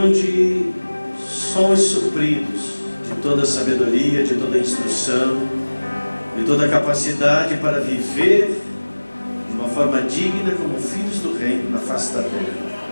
somos supridos de toda a sabedoria, de toda a instrução, de toda a capacidade para viver de uma forma digna como filhos do reino na face da terra.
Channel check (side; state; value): both; inverted; correlation -1.00